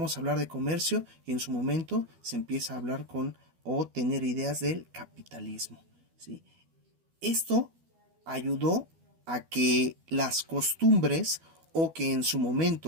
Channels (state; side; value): late; left; 12 ms